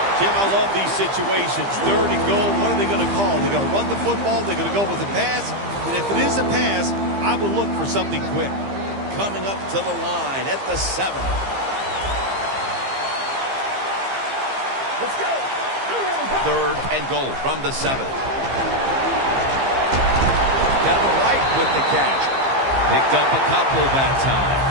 Jim, I love these situations. Third and goal, what are they going to call? They're going to run the football, they're going to go with a pass, and if it is a pass, I will look for something quick. Coming up to the line at the 7. Let's go. Third and goal from the 7. Kevin White with the catch. Picked up a couple that time.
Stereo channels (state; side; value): late; left; 15 ms